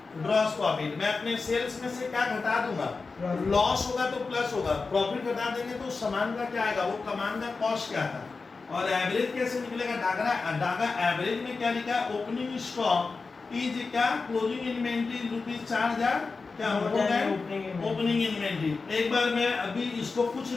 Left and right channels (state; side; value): quieter; right; 4.3 dB